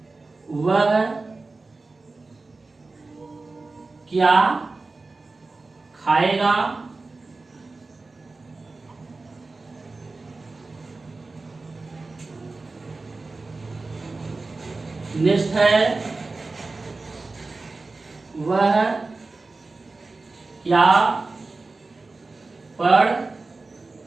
वह क्या खाएगा। नेक्स्ट है वह क्या पढ़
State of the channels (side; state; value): left; quieter; 3.6 dB